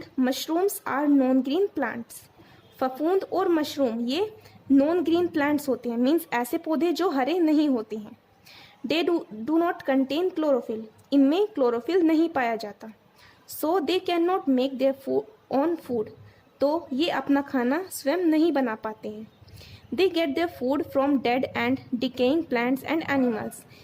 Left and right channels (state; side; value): identical; both; correlation 1.00